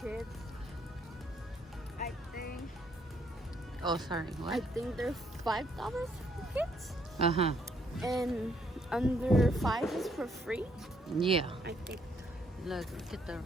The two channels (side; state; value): both; normal; correlation 0.69